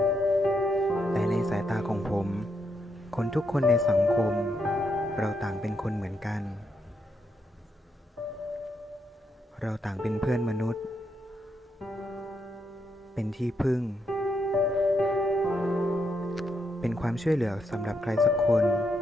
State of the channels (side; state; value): both; normal; correlation 0.79